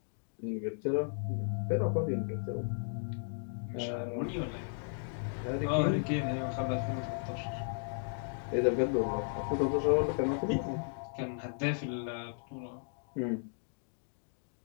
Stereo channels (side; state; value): right; silent; digital silence